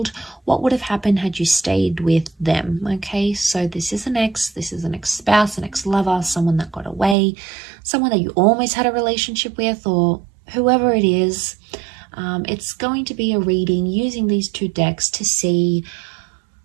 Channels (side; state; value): left; drops out; at 7.2 s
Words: What Would Have Happened Had You Stayed With Them. Okay, so this is an ex-spouse, an ex-lover, someone that got away, someone that you almost had a relationship with, or whoever it is. It's going to be a reading using these two decks to see